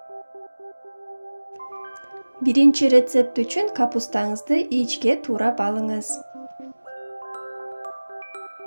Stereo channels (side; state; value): both; inverted; correlation -1.00